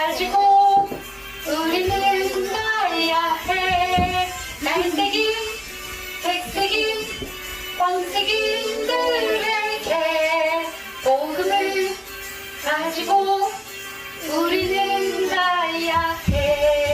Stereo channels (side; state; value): both; identical; correlation 1.00